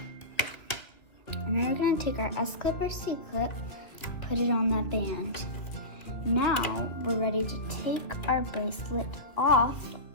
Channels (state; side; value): late; right; 2.3 ms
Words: And then we're gonna take our S-clip or C-clip, put it on that band. Now we're ready to take our bracelet off